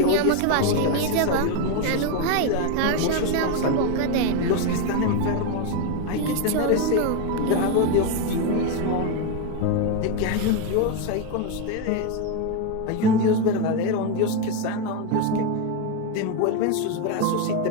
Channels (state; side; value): different; both; correlation 0.02